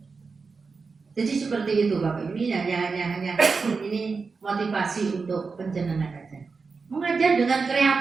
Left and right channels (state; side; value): quieter; left; 4.7 dB